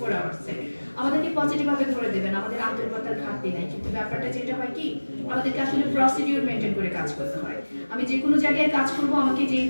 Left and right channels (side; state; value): both; inverted; correlation -1.00